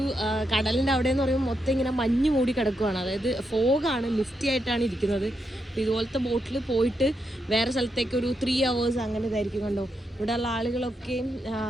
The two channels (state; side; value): normal; both; correlation 0.83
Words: കടലിൻ്റെ അവിടെ എന്ന് പറയുമ്പോൾ മൊത്തം ഇങ്ങനെ മഞ്ഞ് മൂടി കിടക്കുകയാണ്. അതായത് ഫോഗാണ്, മിസ്റ്റി ആയിട്ടാണ് ഇരിക്കുന്നത്. അപ്പോൾ ഇതുപോലത്തെ ബോട്ടിൽ പോയിട്ട് വേറെ സ്ഥലത്തേക്ക് ഒരു 3 hours അങ്ങനെ ഇതായിരിക്കും കണ്ടോ. ഇവിടെയുള്ള ആളുകളൊക്കെയും